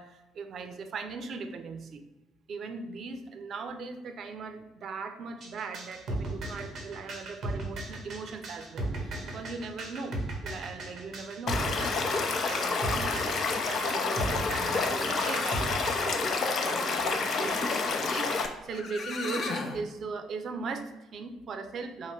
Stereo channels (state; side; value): normal; both; correlation 0.66